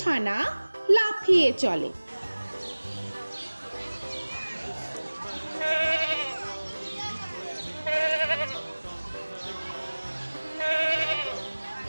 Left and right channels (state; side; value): inverted; both; correlation -1.00